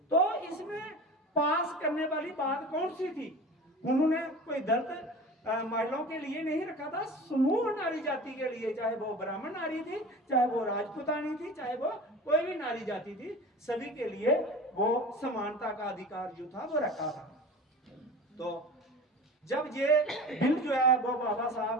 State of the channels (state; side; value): normal; both; correlation 0.36